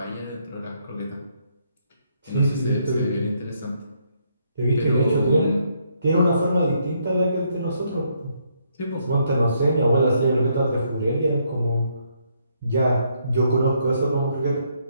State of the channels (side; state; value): both; inverted; correlation -0.73